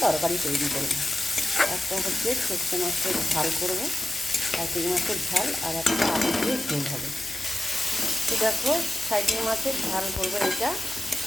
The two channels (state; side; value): noise; left; hum, 23 dB below the sound